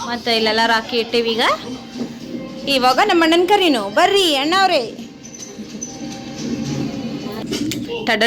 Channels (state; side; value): identical; both; correlation 1.00